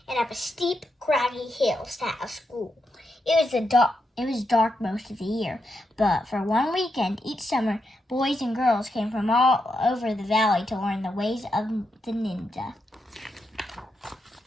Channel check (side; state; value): both; normal; correlation 0.84